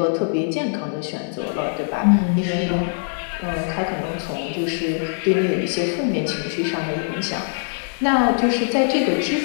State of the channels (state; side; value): silent; right; digital silence